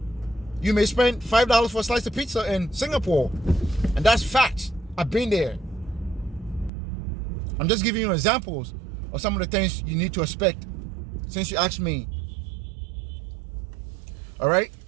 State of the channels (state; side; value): drops out; left; at 6.7 s